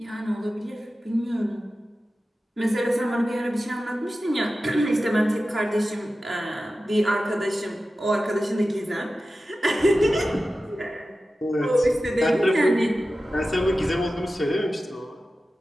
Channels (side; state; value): both; normal; correlation 0.94